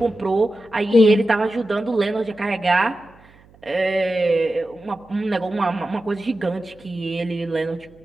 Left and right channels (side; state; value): right; noise; hum, 27 dB below the sound